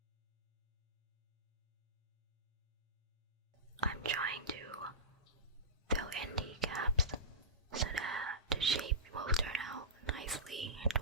I'm trying to fill in the gaps so that the shape will turn out nicely in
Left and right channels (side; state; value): both; normal; correlation -0.19